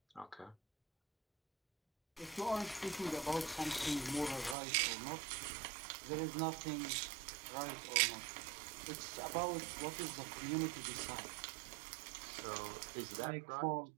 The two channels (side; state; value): left; drops out; at 4.5 s